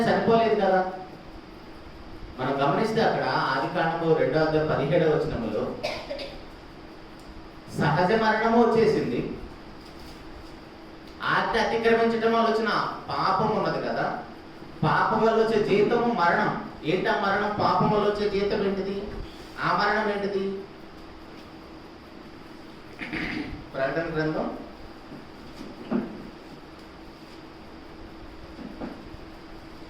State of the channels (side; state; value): both; identical; correlation 1.00